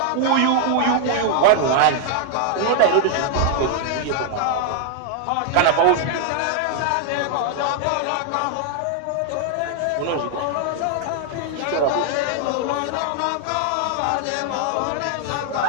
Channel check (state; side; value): different; both; correlation 0.00